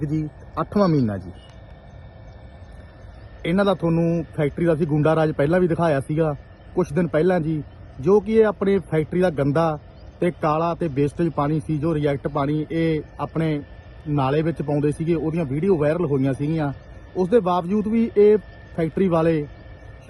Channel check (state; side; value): identical; both; correlation 1.00